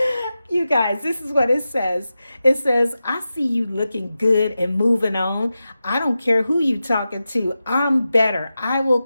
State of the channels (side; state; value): both; inverted; correlation -0.92